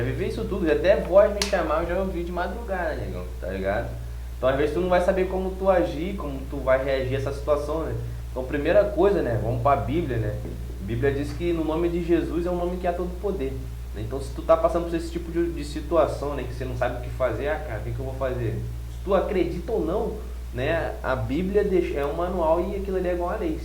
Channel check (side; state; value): both; identical; correlation 1.00